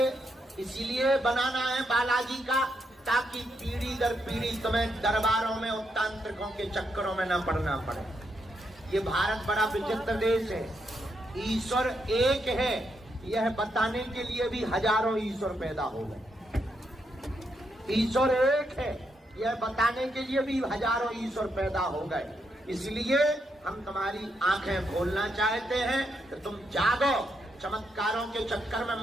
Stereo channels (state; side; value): normal; both; correlation 0.80